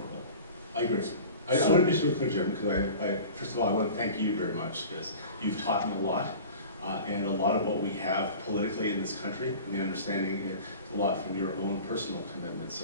I agree. I want to be so clear, Jim, because first of all, I want to thank you very much, because you've taught me a lot, and a lot of what we have politically in this country, and the understanding is a lot from your own personal commitment.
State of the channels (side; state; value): both; inverted; correlation -0.39